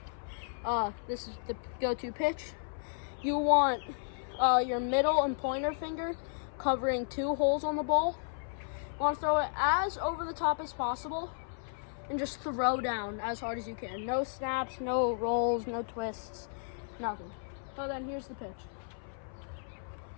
this is the go-to pitch. You want your middle and pointer finger covering two holes on the ball. You want to throw it as over the top as possible and just throw down as hard as you can. No snaps, no rolls, no twists, nothing. So then here's the pitch.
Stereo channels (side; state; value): right; silent; 55 dB below the other